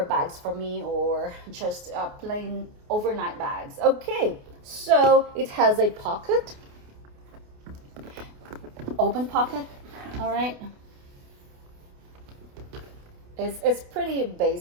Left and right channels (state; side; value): late; left; 28 ms